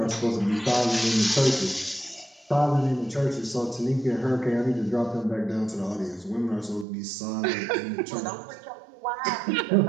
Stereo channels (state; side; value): drops out; left; at 6.9 s